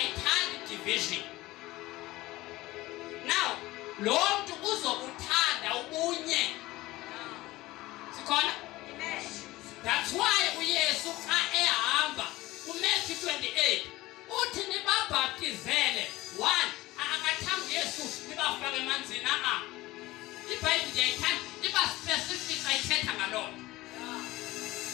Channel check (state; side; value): quieter; right; 18.6 dB